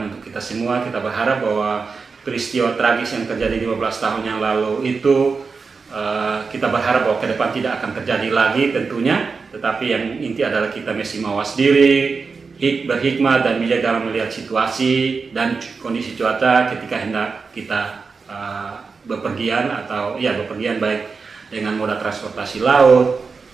untuk kita semua. Kita berharap bahwa peristiwa tragis yang terjadi 15 tahun yang lalu itu, kita berharap bahwa ke depan tidak akan terjadi lagi tentunya. Tetapi yang inti adalah kita mesti mawas diri, berhikmat dan bijak dalam melihat situasi dan kondisi cuaca ketika hendak kita bepergian baik dengan moda transportasi laut,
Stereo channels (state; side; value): quieter; left; 4.8 dB